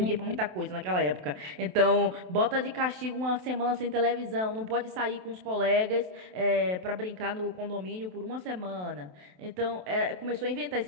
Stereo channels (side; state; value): left; late; 27 ms